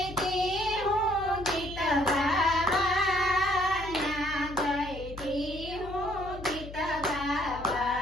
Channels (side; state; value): left; noise; hum, 13 dB below the sound